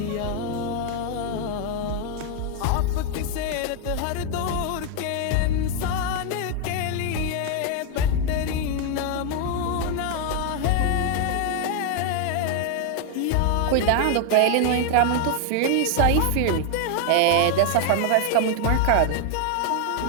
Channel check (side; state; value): both; different; correlation 0.01